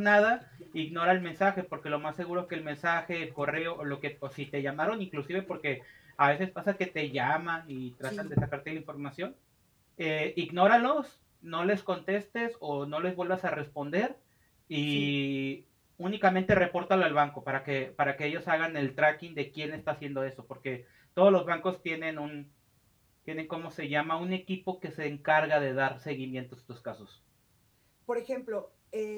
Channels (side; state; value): both; identical; correlation 1.00